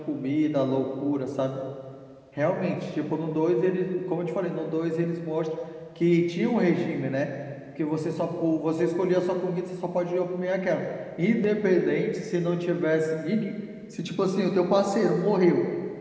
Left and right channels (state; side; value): identical; both; correlation 1.00